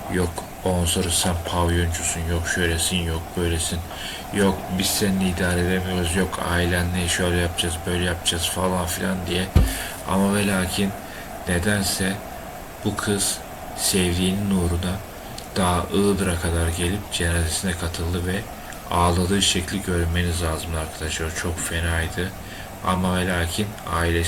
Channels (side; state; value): both; identical; correlation 1.00